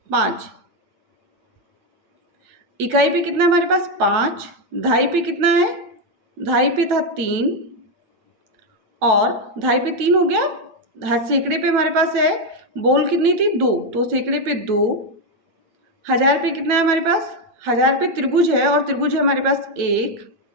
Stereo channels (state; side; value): late; left; 9.1 ms